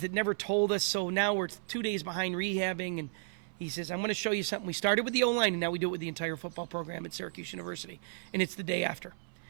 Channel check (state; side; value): silent; left; 56 dB below the other